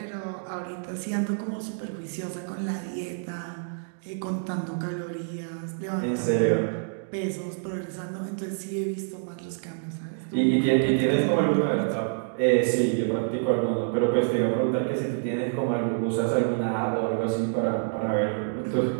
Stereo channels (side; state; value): left; silent; digital silence